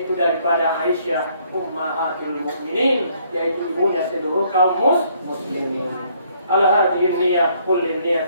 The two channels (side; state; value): both; inverted; correlation -0.66